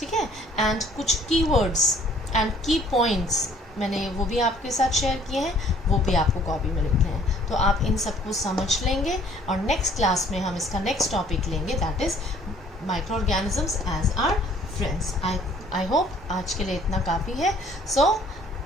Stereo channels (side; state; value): both; normal; correlation 0.58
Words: है, एंड कुछ कीवर्ड्स एंड की पॉइंट्स मैंने वो भी आपके साथ शेयर किए हैं, वो भी आपको कॉपी में लिखने हैं। तो आप इन सबको समझ लेंगे, और नेक्स्ट क्लास में हम इसका नेक्स्ट टॉपिक लेंगे, that is micro organisms as our friends. I hope आज के लिए इतना काफ़ी है। So